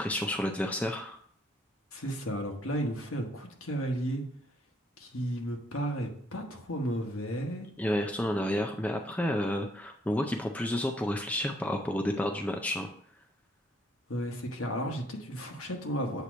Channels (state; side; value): normal; both; correlation 0.67